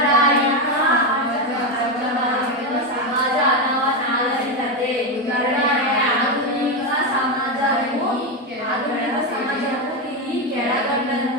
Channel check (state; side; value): normal; both; correlation 0.11